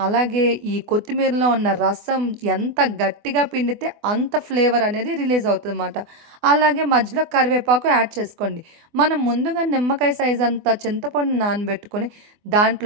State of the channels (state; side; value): late; left; 24 ms